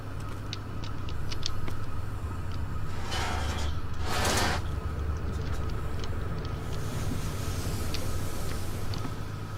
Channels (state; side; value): identical; both; correlation 1.00